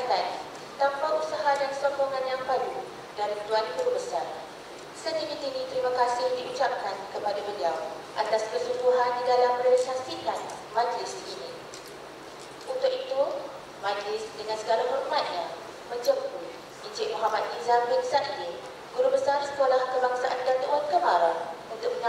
tanpa usaha dan sokongan yang padu dari Tuan Guru Besar. Setinggi-tinggi terima kasih diucapkan kepada beliau atas kesungguhan di dalam merealisasikan majlis ini. Untuk itu, majlis dengan segala hormatnya menjemput Encik Muhammad Nizam bin Sa'id, Guru Besar Sekolah Kebangsaan Datuk Wan Kemara, untuk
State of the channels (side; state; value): both; identical; correlation 1.00